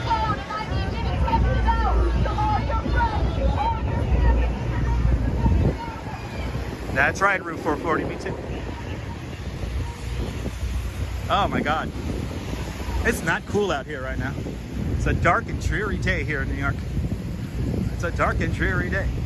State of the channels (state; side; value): identical; both; correlation 1.00